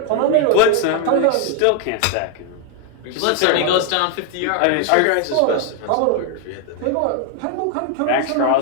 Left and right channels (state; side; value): different; both; correlation 0.00